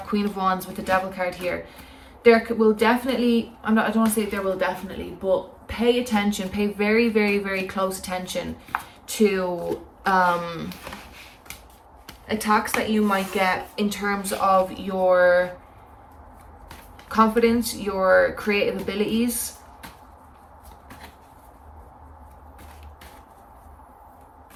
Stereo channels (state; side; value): identical; both; correlation 1.00